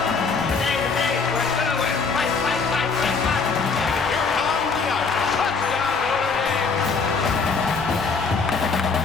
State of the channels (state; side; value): quieter; right; 4.8 dB